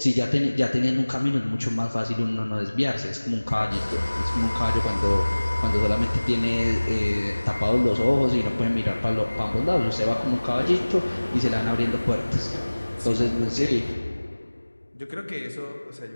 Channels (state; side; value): inverted; both; correlation -1.00